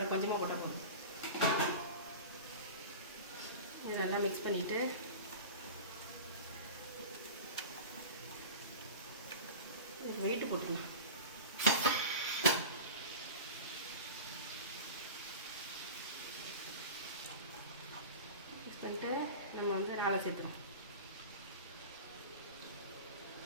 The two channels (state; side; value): inverted; both; correlation -0.31